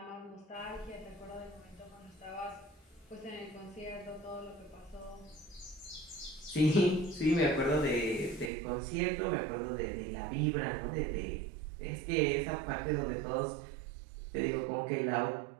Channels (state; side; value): drops out; left; at 8.5 s